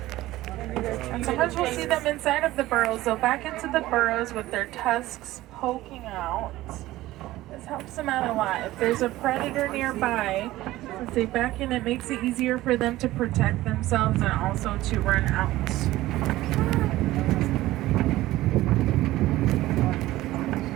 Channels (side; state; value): left; quieter; 16.5 dB